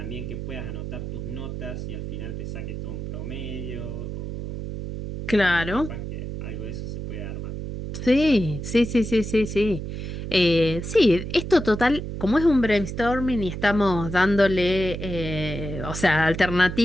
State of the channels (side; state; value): right; noise; hum, 6 dB below the sound